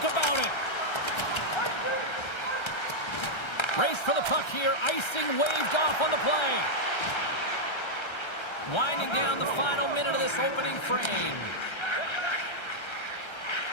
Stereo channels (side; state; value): right; late; 1.3 ms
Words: about it. Race for the puck here. Icing waved off on the play. Winding down the final minute of this opening frame.